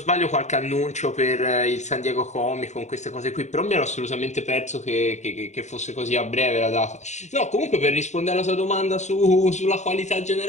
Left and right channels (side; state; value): right; late; 0.34 ms